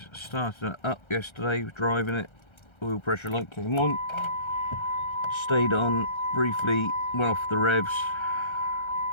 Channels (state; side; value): late; right; 1.3 ms